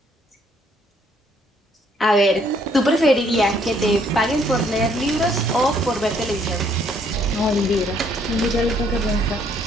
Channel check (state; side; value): normal; both; correlation 0.66